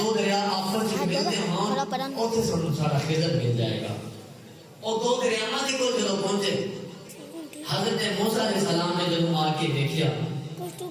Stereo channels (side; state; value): both; identical; correlation 1.00